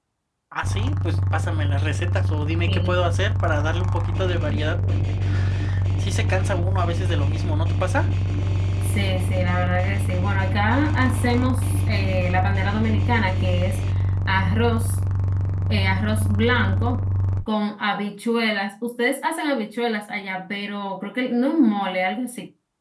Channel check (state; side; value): identical; both; correlation 1.00